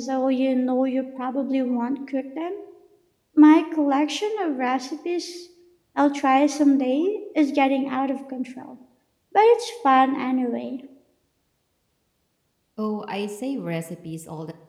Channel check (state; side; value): identical; both; correlation 1.00